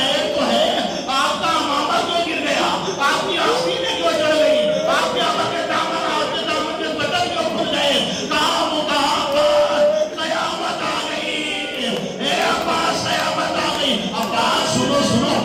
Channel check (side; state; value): both; identical; correlation 1.00